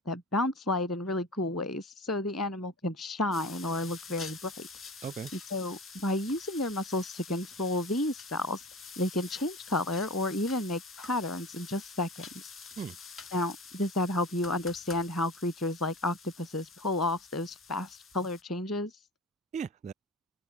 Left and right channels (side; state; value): both; normal; correlation 0.34